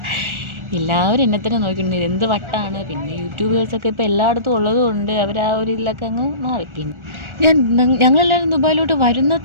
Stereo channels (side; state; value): left; late; 1.4 ms